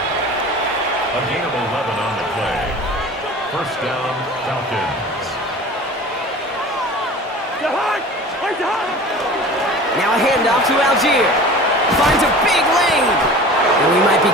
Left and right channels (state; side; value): normal; both; correlation 0.40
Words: gain of 11 on the play. First down, Falcons. Now a handoff to Algier. Finds a big lane. And we might be